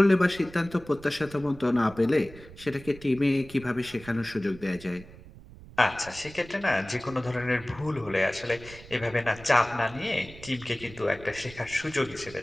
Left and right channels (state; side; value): noise; right; rumble, 18 dB below the sound